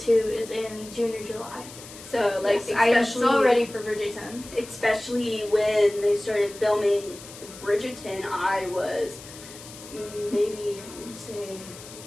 is in June or July. So like, yes, I am so ready for Bridgerton. Especially when they started filming Bridgerton, I was maybe, I want to say,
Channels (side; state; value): left; noise; hiss, 16 dB below the sound